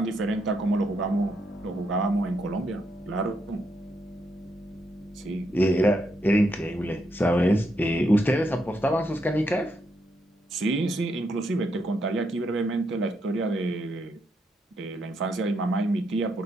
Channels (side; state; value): both; normal; correlation 0.79